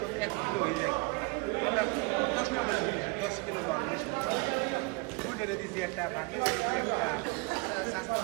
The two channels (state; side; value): quieter; left; 27.7 dB